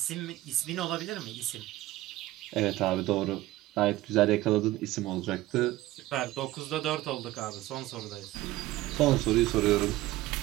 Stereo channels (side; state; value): left; quieter; 16.8 dB